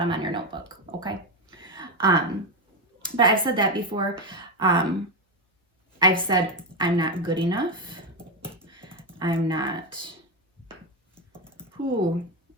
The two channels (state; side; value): normal; both; correlation 0.10